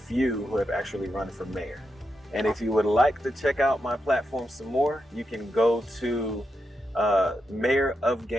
who have actually run for mayor. And if you would like to check out my platform some more, you can go to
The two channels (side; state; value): both; normal; correlation 0.85